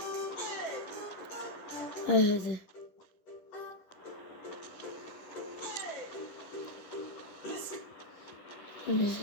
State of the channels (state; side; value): late; right; 10 ms